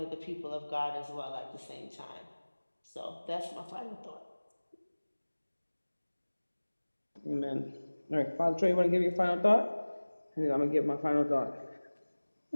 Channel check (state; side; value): inverted; both; correlation -1.00